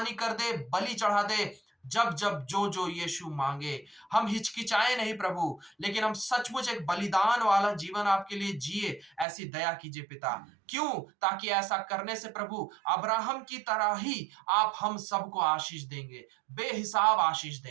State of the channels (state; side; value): drops out; left; at 9.2 s